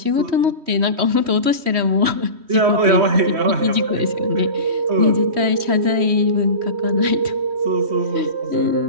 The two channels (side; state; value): left; late; 3.1 ms